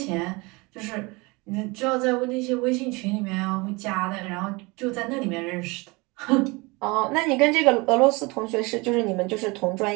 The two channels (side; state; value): left; quieter; 25.8 dB